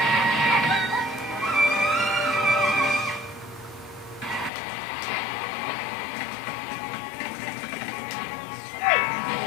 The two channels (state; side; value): drops out; right; at 4.5 s